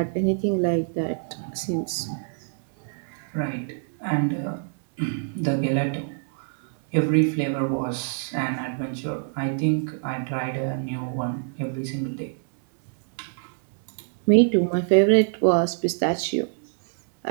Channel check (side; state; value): left; silent; 62 dB below the other